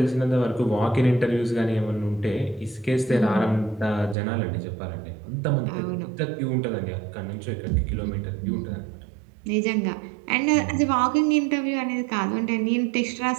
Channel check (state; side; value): drops out; left; at 4.2 s